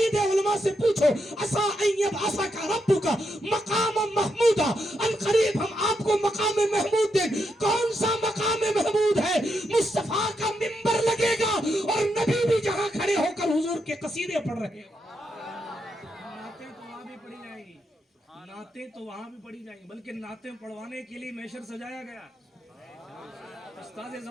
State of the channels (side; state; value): both; normal; correlation 0.82